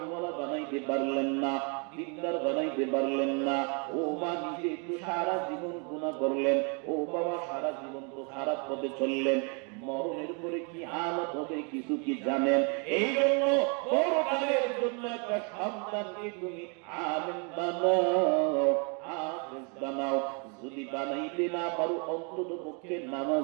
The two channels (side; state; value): left; quieter; 35.9 dB